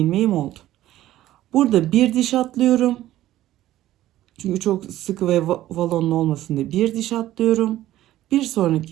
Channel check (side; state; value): left; quieter; 14.2 dB